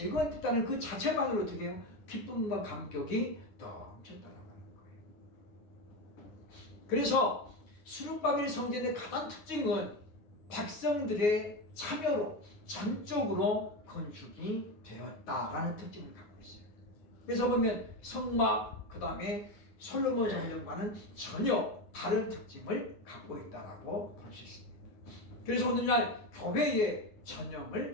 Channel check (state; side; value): late; right; 9.5 ms